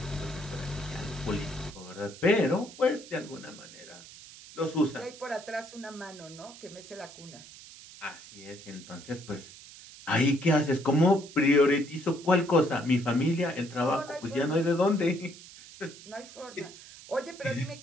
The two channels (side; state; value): right; noise; hiss, 18 dB below the sound